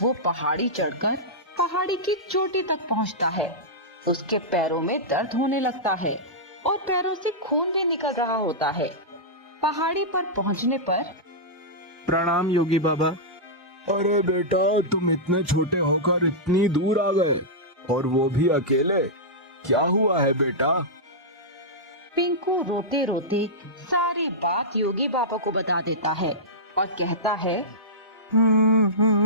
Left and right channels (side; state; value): both; normal; correlation -0.12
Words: वो पहाड़ी चढ़कर पहाड़ी की चोटी तक पहुंचता है। उसके पैरों में दर्द होने लगता है और पैरों से खून भी निकल रहा होता है। पहाड़ी पर पहुंचने पर, प्रणाम योगी बाबा। अरे बेटा, तुम इतने छोटे होकर इतनी दूर आ गए और वो भी अकेले, क्या हुआ है बेटा? पिंकू रोते रोते सारी बात योगी बाबा को बता देता है और कहता है,